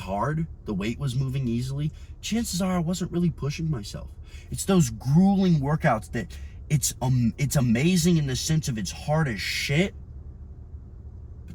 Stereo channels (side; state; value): both; identical; correlation 1.00